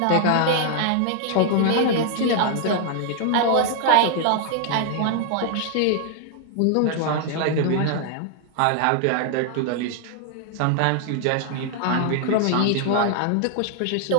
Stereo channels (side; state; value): both; different; correlation 0.00